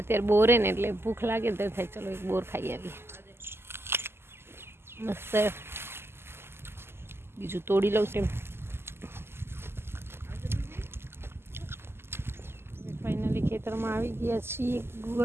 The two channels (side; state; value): left; late; 0.12 ms